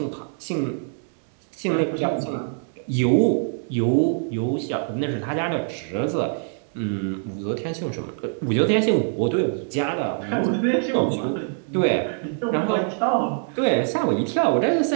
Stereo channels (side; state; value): left; silent; 63 dB below the other